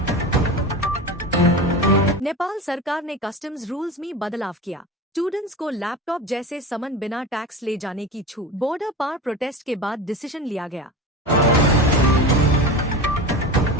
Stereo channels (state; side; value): normal; both; correlation 0.28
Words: नेपाल सरकार ने कस्टम्स रूल्स में बदलाव किया। स्टूडेंट्स को लैपटॉप जैसे सामान बिना टैक्स ले जाने की छूट। बॉर्डर पार प्रोटेस्ट के बाद डिसीजन लिया गया।